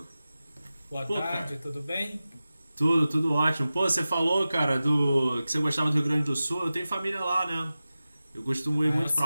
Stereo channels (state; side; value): inverted; both; correlation -0.95